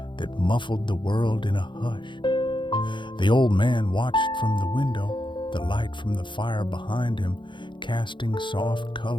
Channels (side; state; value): right; late; 0.23 ms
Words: that muffled the world in a hush. The old man watched from the window, the light from the fire behind him casting soft